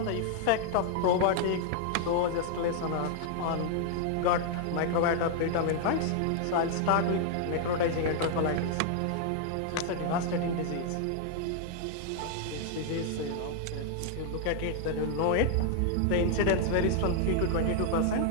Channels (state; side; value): different; both; correlation 0.00